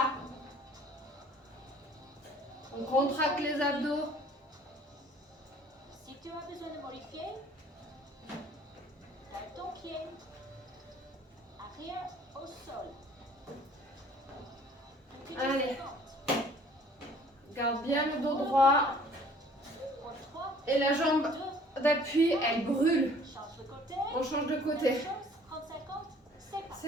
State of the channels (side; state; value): both; normal; correlation 0.54